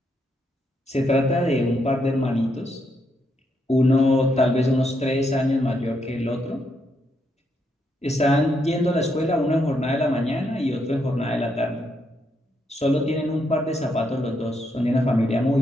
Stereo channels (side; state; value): both; normal; correlation 0.78